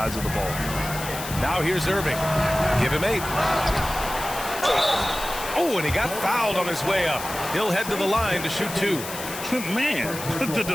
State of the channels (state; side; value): noise; left; hiss, 9 dB below the sound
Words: of the ball. Now here's Irving. Give him 8. Oh, and he got fouled on his way up. He'll head to the line to shoot 2. Man, the